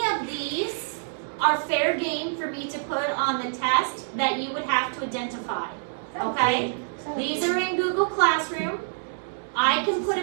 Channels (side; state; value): left; silent; 61 dB below the other